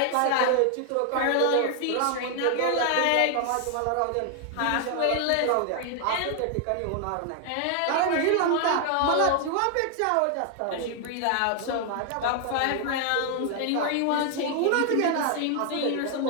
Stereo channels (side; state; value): both; different; correlation 0.00